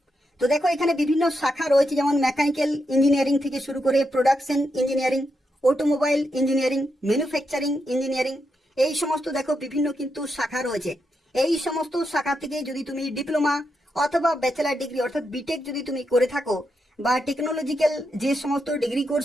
তো দেখো, এখানে বিভিন্ন শাখা রয়েছে, যেমন মেকানিক্যাল ইঞ্জিনিয়ারিং থেকে শুরু করে production engineering, automobile engineering, manufacturing engineering এই সমস্ত দেখো বিভিন্ন কিন্তু শাখা রয়েছে। এই সমস্ত শাখা থেকে যদি তুমি ডিপ্লোমা অথবা ব্যাচেলার ডিগ্রি অর্থাৎ বিটেক যদি তুমি করে থাকো বা টেকনোলজিক্যাল যে সমস্ত ডিগ্রি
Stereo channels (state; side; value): normal; both; correlation 0.84